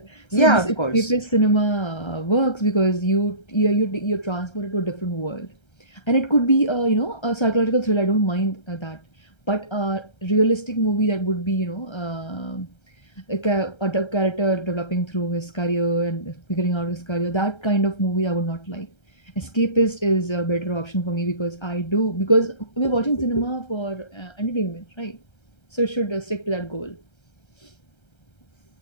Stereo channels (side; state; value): right; late; 1.3 ms